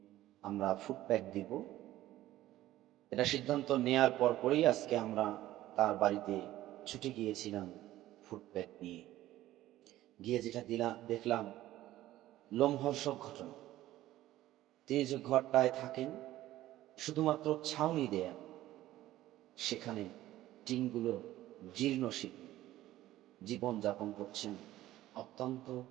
আমরা ফুড প্যাক দিব। এটা সিদ্ধান্ত নেয়ার পরপরই আজকে আমরা তার বাড়িতে ছুটে গিয়েছিলাম ফুড প্যাক নিয়ে। গিয়ে যেটা দেখলাম লোমহর্ষক ঘটনা। তিনি যে ঘরটায় থাকেন শুধুমাত্র ছাউনি দেয়া, সেখানে টিনগুলো জীর্ণ শীর্ণ, জীবনযাপন করছেন অত্যন্ত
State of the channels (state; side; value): quieter; left; 14.9 dB